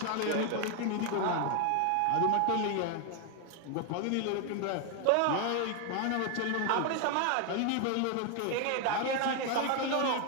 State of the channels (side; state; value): both; different; correlation 0.00